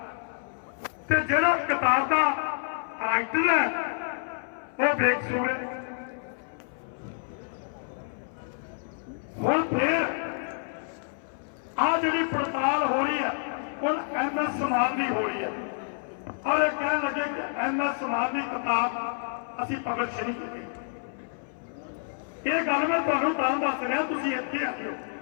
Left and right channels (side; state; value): right; silent; 59 dB below the other